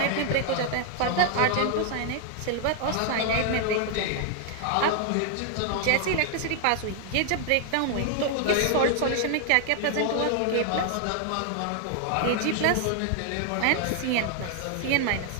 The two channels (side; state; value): both; different; correlation 0.00